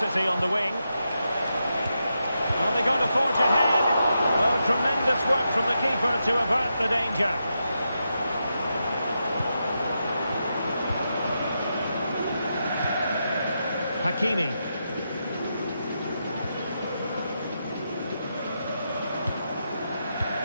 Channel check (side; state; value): both; inverted; correlation -0.86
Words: on the wing. Are they going to forge ahead? Oh, tremendous work from the keeper to avert the danger. Hakimi.